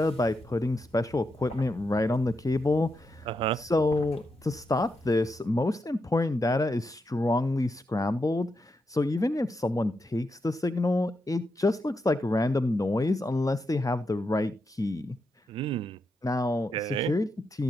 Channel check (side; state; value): both; normal; correlation 0.84